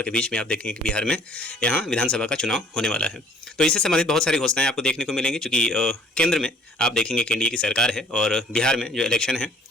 के बीच में आप देखेंगे कि बिहार में यहाँ विधानसभा का चुनाव होने वाला है। तो इससे संबंधित बहुत सारी घोषणाएं आपको देखने को मिलेंगी, चूँकि केंद्र में आप देखेंगे कि एनडीए की सरकार है और बिहार में जो इलेक्शन है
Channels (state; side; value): normal; both; correlation 0.56